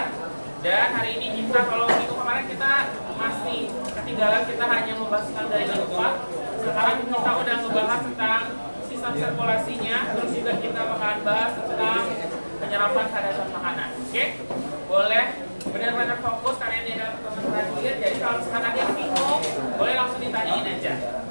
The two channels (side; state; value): both; inverted; correlation -1.00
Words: Dan hari ini kita, kalau minggu kemarin kita masih ketinggalan, kita hanya membahas tentang dari alfa. Sekarang kita udah ngebahas tentang sistem sirkulasinya. Terus juga kita bakalan bahas tentang penyerapan kadar makanan. Oke? Boleh benar-benar fokus karena ini adalah pertemuan terakhir. Jadi kalau misalkan ada yang bingung, boleh langsung ditanyain aja.